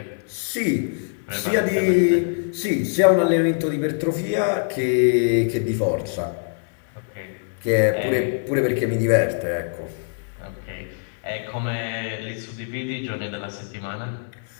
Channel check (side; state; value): right; silent; 63 dB below the other